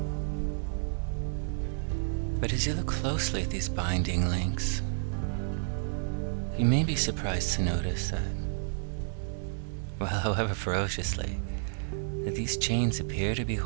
But as you look closely at these binding links, you may be surprised to notice that, well, however ferociously, that these chains appear to be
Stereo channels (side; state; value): left; silent; 57 dB below the other